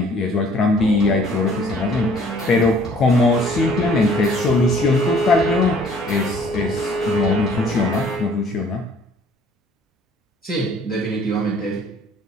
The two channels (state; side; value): normal; both; correlation 0.56